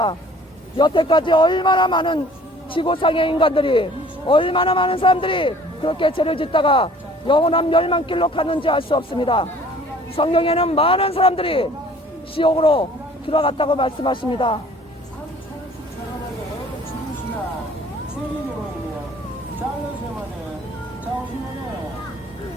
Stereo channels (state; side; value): normal; both; correlation 0.52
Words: 여태까지 얼마나 많은 지구상의 인간들이, 얼마나 많은 사람들이 그렇게 죄를 짓다가 영원한 멸망길로 갔는지 알 수 없습니다. 성경에는 많은 사람들이 지옥으로 들어갔다고 말씀하십니다.